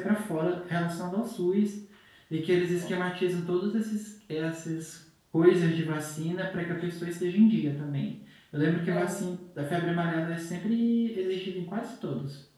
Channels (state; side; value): identical; both; correlation 1.00